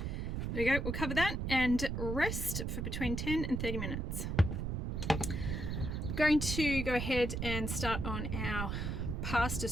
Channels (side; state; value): right; noise; rumble, 2 dB below the sound